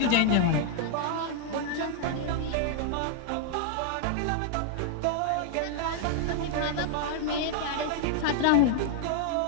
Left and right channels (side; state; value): both; different; correlation 0.00